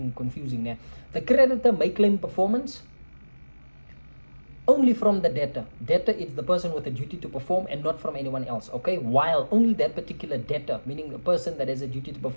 confusing now. The creditor may claim performance only from the debtor. Debtor is the person with a duty to perform and not from anyone else, okay, while only that particular debtor, meaning the person that has a duty to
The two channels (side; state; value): both; inverted; correlation -1.00